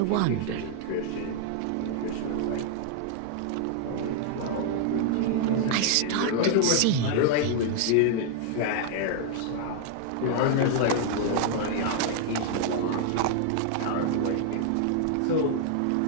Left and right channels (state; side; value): different; both; correlation -0.01